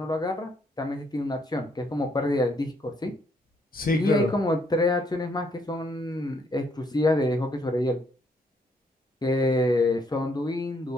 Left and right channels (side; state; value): both; normal; correlation 0.71